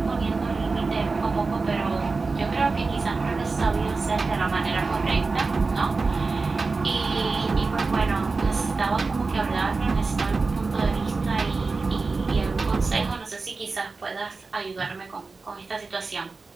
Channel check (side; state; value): left; quieter; 4.0 dB